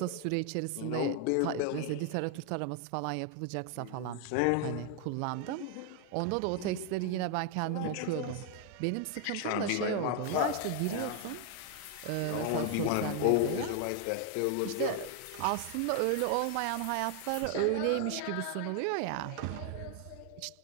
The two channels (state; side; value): different; both; correlation 0.01